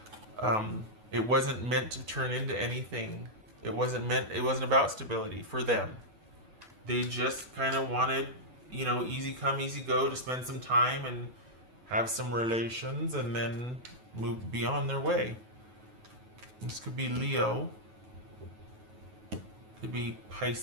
it wasn't meant to turn into anything. It wasn't about stability for them. They just kind of wanted, you know, easy come, easy go, to spend some time and have some relations and then move beyond their way. This could be Leo. Could be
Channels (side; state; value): left; late; 9.0 ms